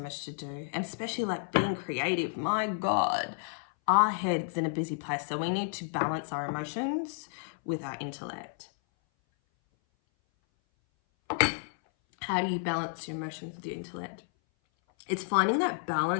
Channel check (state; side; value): silent; right; 57 dB below the other